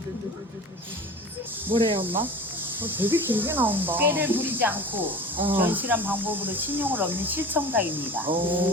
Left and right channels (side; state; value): both; normal; correlation 0.37